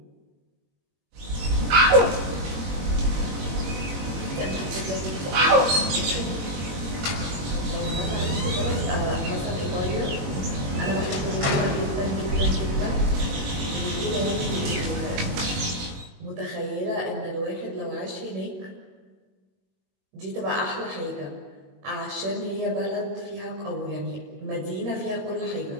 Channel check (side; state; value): left; late; 21 ms